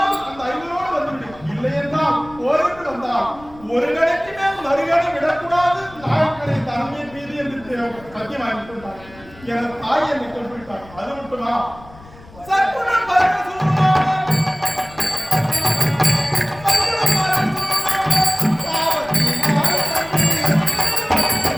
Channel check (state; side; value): noise; left; rumble, 21 dB below the sound